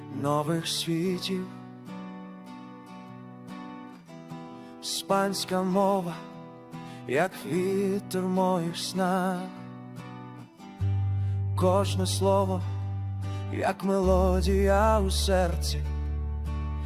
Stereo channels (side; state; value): both; identical; correlation 1.00